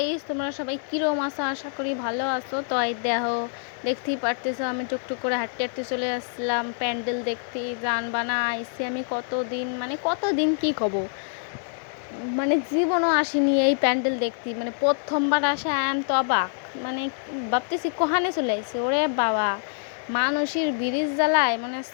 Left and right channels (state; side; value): silent; right; digital silence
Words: তোমরা সবাই কিরম আছো? আশা করি ভালো আছো। তো এই দেখতেই পারতেছো আমি টুকটুক করে হাঁটতে হাঁটতে চলে আসলাম প্যান্ডেল দেখতে। জান বানা আইসি আমি কতদিন কি কব, জীবনও আসিনি এই প্যান্ডেল দেখতে। প্রথমবার আসে আয়াম তো অবাক। ভাবতেছি কোহানে চলে আসছি, ওরে বাবা, মানুষের ব্রিজ জ্বালায়